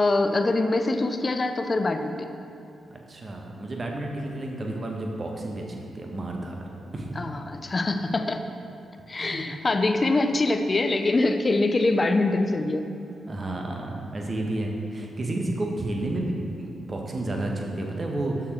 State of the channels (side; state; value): both; normal; correlation 0.91